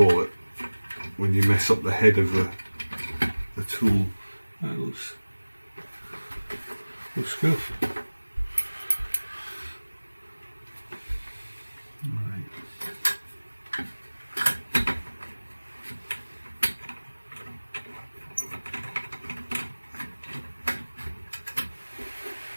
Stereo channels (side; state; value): both; inverted; correlation -1.00